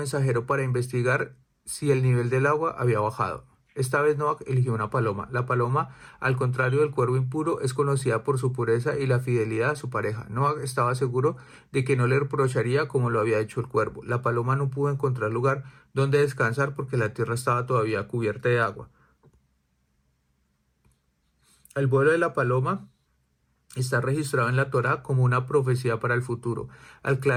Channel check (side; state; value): both; identical; correlation 1.00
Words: para investigar si el nivel del agua había bajado. Esta vez Noah eligió una paloma. La paloma, al contrario del cuervo impuro, es conocida por su pureza y la fidelidad a su pareja. Noah estaba seguro de que no le reprocharía como lo había hecho el cuervo. La paloma no pudo encontrar lugar donde descansar porque la tierra estaba todavía cubierta de agua. El vuelo de la paloma está registrado en la Torá como una profecía para el futuro. Al